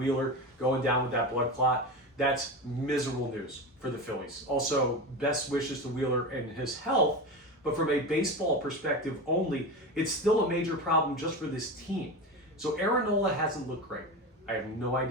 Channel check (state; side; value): normal; both; correlation 0.24